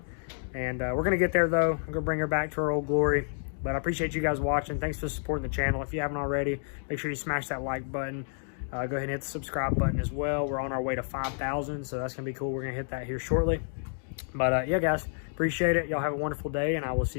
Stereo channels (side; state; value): right; silent; 58 dB below the other